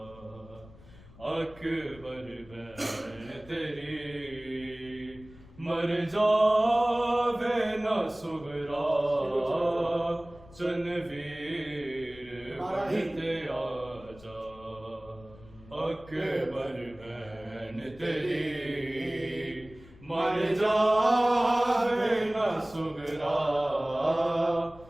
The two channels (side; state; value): left; noise; rumble, 22 dB below the sound